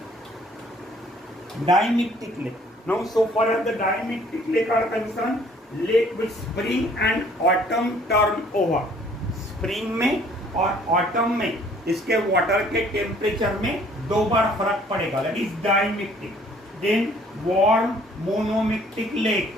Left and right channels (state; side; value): normal; both; correlation 0.58